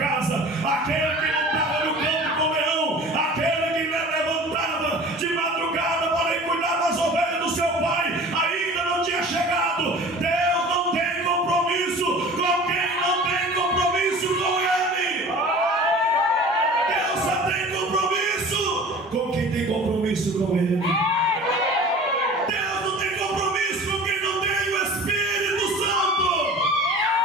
aquele que não estava no campo com o leão, aquele que levantava de madrugada para ir cuidar das ovelhas do seu pai, ainda não tinha chegado. Deus não tem compromisso com quem não tem compromisso com ele. Deus só tem compromisso com quem tem compromisso com ele. Deus não tem compromisso com quem não tem o Espírito Santo.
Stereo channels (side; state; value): both; normal; correlation 0.41